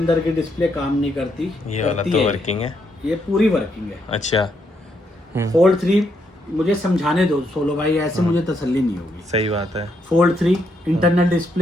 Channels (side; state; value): both; normal; correlation 0.77